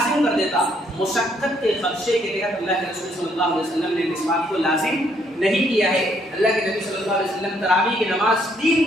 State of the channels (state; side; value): normal; both; correlation 0.69